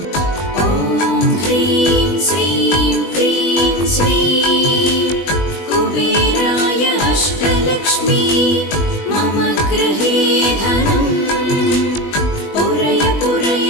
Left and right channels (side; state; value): right; late; 20 ms